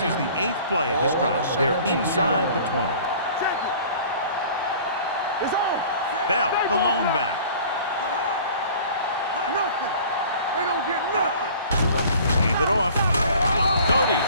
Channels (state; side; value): inverted; both; correlation -0.47